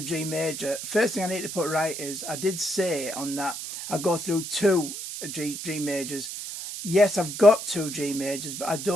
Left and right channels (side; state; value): right; noise; hiss, 7 dB below the sound